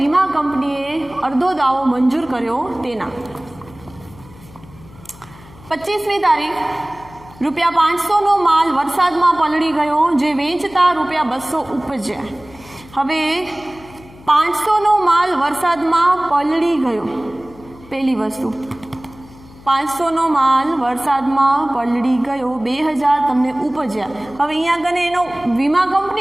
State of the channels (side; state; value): left; noise; hum, 22 dB below the sound